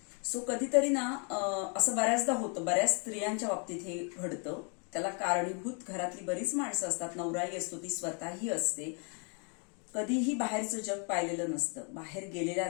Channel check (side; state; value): right; quieter; 38.1 dB